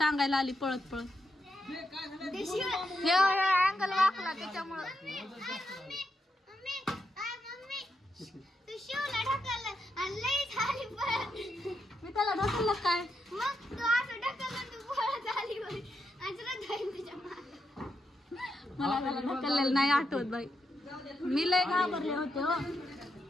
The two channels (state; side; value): normal; both; correlation 0.83